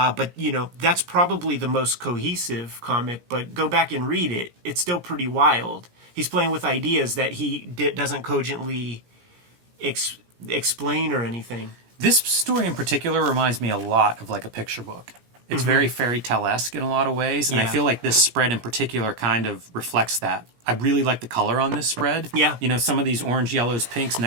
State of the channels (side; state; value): left; late; 17 ms